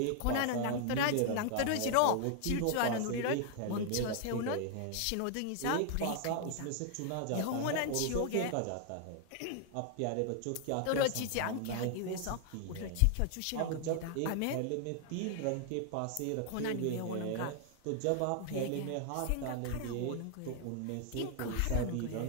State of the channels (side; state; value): both; different; correlation 0.00